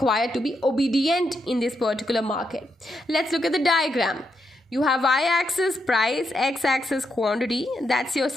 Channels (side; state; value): both; normal; correlation 0.82